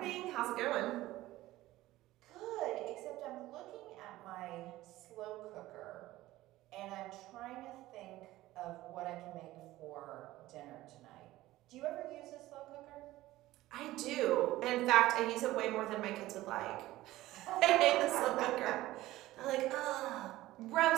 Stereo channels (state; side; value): quieter; left; 16.6 dB